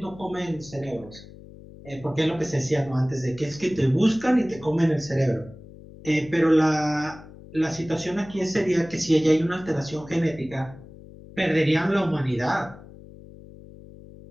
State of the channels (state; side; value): noise; left; hum, 18 dB below the sound